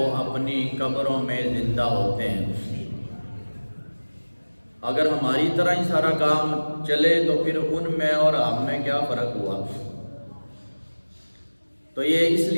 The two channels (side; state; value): both; inverted; correlation -1.00